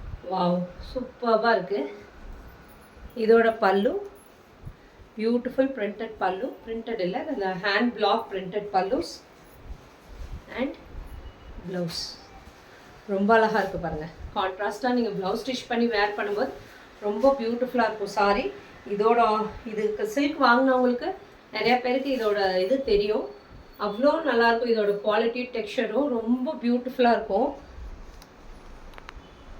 வாவ், சூப்பராக இருக்குது. இதோட பல்லு பியூட்டிஃபுல் பிரிண்டட் பல்லு, பிரிண்டட் இல்லை, அந்த hand block printed pallus and blouse. ரொம்ப அழகாக இருக்குது பாருங்கள். கான்ட்ராஸ்ட்டாக நீங்கள் ப்ளவுஸ் ஸ்டிச் பண்ணி வேர் பண்ணும்போது ரொம்ப பியூட்டிஃபுல்லாக இருக்கும் சாரி. இதுக்கு சில்க் வாங்கினவங்களுக்கு நிறையா பேருக்கு இதோட இது தெரியும். அவ்வளோ நல்லாயிருக்கும். இதோட குவாலிட்டி டெக்ஸ்சரும் ரொம்ப பியூட்டிஃபுல்லாக இருக்கும்.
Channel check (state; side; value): identical; both; correlation 1.00